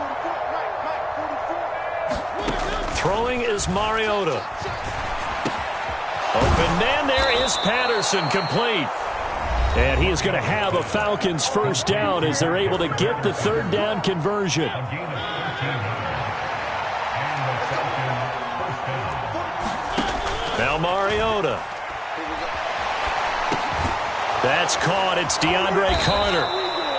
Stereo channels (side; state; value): both; identical; correlation 1.00